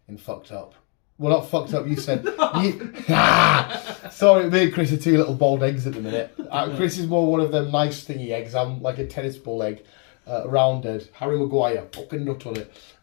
and fucked up. Well, not fucked up. You said. Sorry, me and Chris are two little bald eggs at the minute. Chris is more one of them nice thingy eggs. I'm like a tennis ball egg, rounded. Harry Maguire, fucking nut on it.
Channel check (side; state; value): right; quieter; 37.2 dB